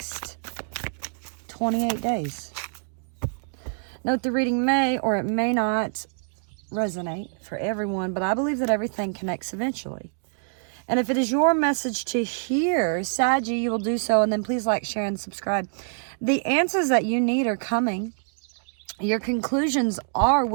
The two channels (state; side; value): silent; left; 61 dB below the other